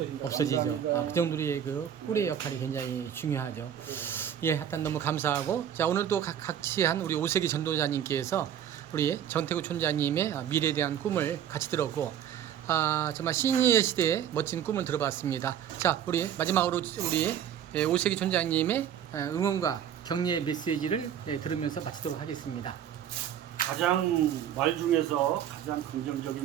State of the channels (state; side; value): quieter; left; 9.7 dB